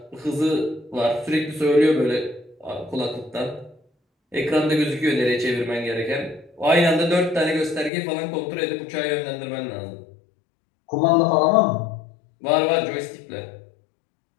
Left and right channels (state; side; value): drops out; right; at 7.9 s